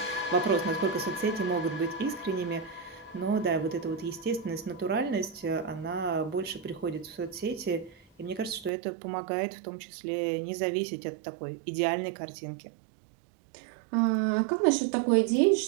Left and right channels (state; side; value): drops out; left; at 8.7 s